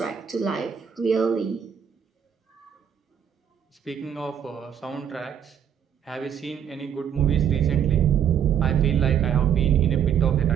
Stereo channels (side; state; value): left; quieter; 8.5 dB